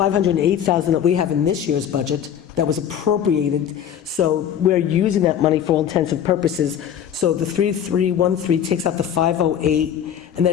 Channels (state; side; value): quieter; right; 9.3 dB